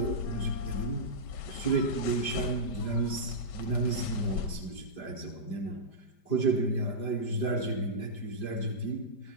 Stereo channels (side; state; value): right; late; 5.0 ms